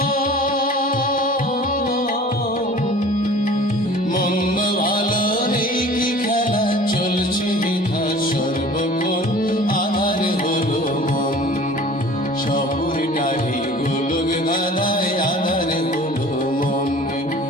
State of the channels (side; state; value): both; normal; correlation 0.45